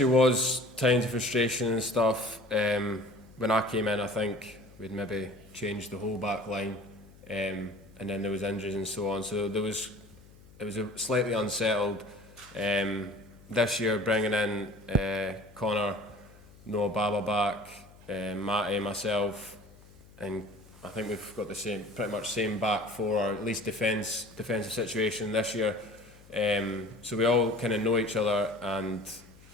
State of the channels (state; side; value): noise; left; hum, 23 dB below the sound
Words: was times of frustration and stuff. When I came in, I think we'd maybe changed the whole back line, and then there was injuries and so on. So it was a slightly unsettled. This year, bringing in Connor, Noah Baba back, Matty, myself, and I think we've got the pretty much same back four, or at least defensive situation this year. So we all kind of know each other, and